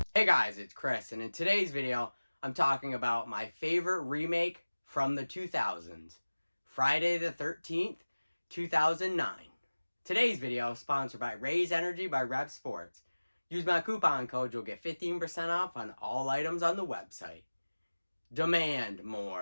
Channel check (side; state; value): both; inverted; correlation -1.00